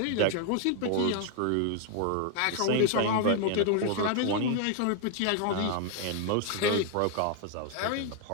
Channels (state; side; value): different; both; correlation 0.00